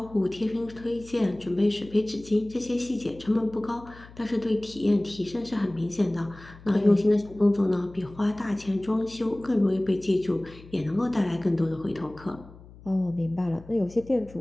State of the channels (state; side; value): noise; left; hum, 20 dB below the sound